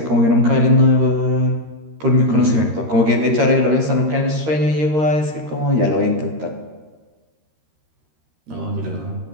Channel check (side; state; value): left; late; 13 ms